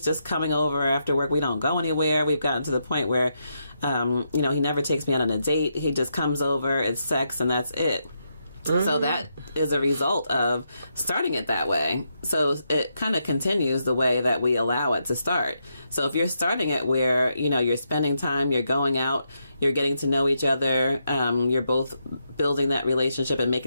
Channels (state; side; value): inverted; both; correlation -0.81